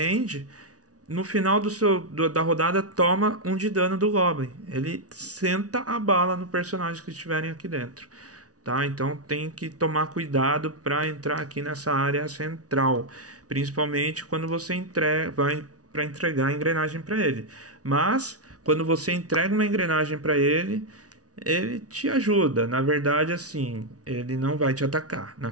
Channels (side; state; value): left; late; 0.68 ms